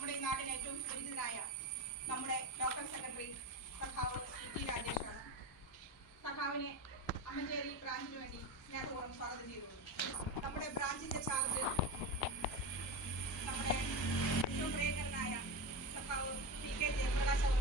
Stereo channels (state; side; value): normal; both; correlation 0.20